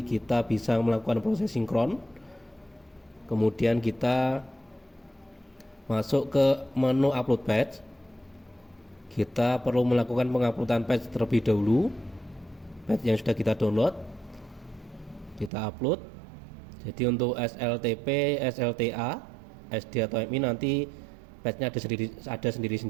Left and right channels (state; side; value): drops out; left; at 15.5 s